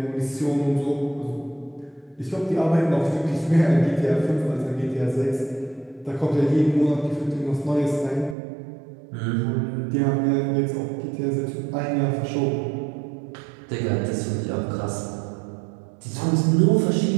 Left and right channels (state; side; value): drops out; left; at 8.3 s